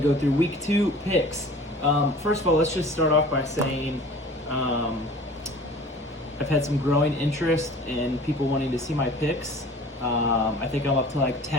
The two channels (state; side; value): normal; both; correlation 0.45